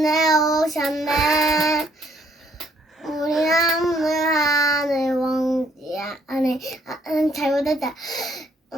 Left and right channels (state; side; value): normal; both; correlation 0.66